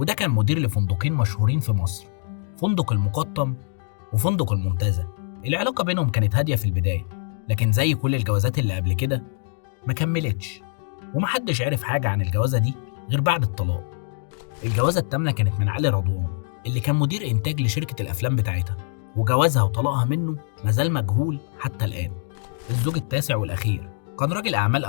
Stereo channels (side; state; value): right; silent; digital silence